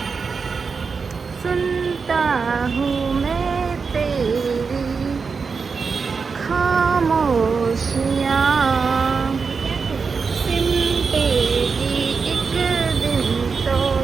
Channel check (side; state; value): left; quieter; 5.1 dB